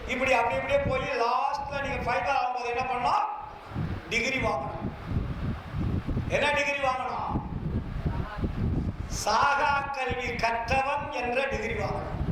இப்படி அப்படி இப்படியே போய் லாஸ்ட்ல நீங்க ஃபைனல் ஆகும்போது என்ன பண்ணணும்? டிகிரி வாங்கணும். என்ன டிகிரி வாங்கணும்? சாகா கல்வி கற்றவன் என்ற டிகிரி வாங்கணும்.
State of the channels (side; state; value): both; identical; correlation 1.00